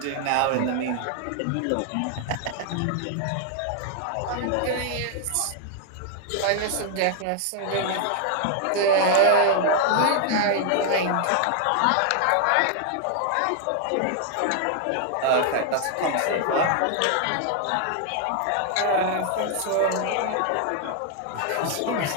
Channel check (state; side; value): different; both; correlation 0.00